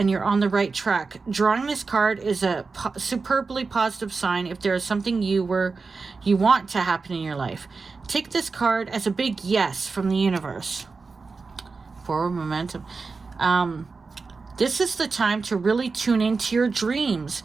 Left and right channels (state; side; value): quieter; left; 4.4 dB